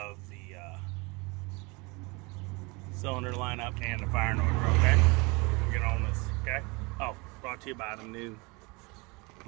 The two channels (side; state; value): left; quieter; 27.0 dB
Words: the cylinder lineup and the firing order, okay? We'll get on this, okay? Oh, brought to you by the new